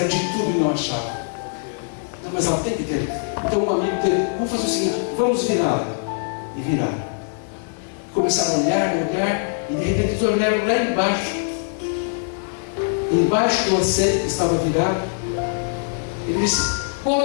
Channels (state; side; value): silent; right; 55 dB below the other